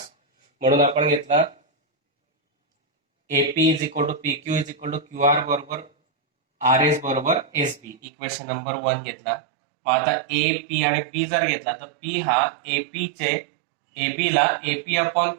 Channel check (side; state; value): left; drops out; at 8.0 s